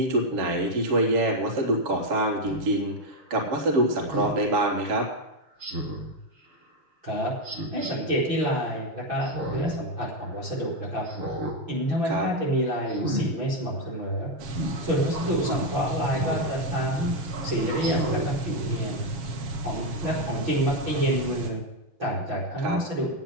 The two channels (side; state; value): left; late; 7.2 ms